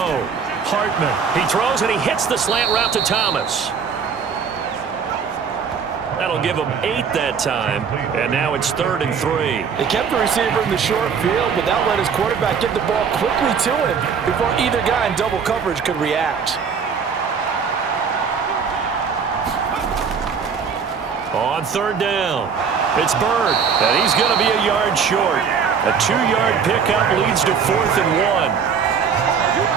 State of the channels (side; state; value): left; quieter; 6.4 dB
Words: Hartman. He throws and he hits the slant route to Thomas. That'll give him 8 that time. And now it's 3rd and 3. They kept the receiver in the short field, but that let his quarterback get the ball quickly to him before either guy in double coverage could react. On 3rd down, it's Bird, and he's going to be a yard short. A 2-yard pickup leads to 4th and 1.